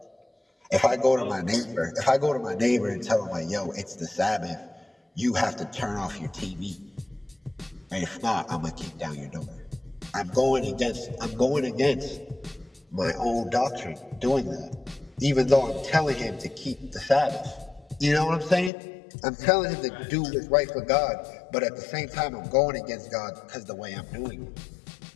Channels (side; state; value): right; drops out; at 18.7 s